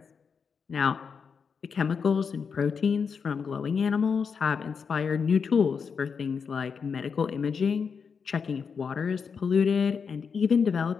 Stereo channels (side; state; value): right; quieter; 5.9 dB